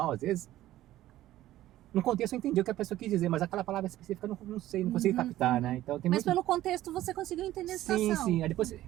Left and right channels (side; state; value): left; quieter; 14.5 dB